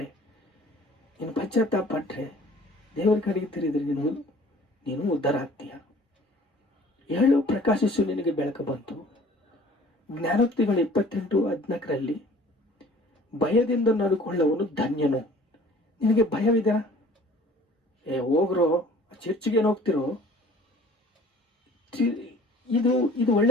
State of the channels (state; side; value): normal; both; correlation 0.51